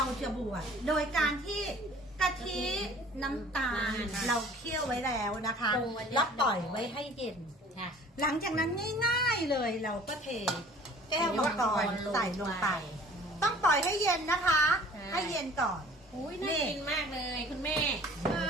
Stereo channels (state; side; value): normal; both; correlation 0.50